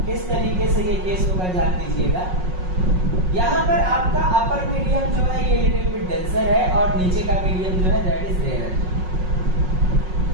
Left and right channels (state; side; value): late; left; 5.5 ms